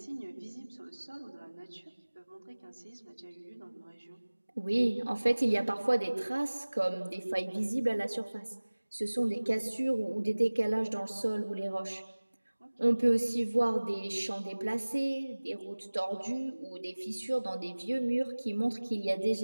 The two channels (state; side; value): inverted; both; correlation -1.00